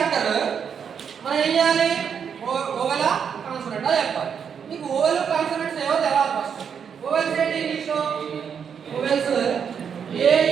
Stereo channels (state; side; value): quieter; left; 7.3 dB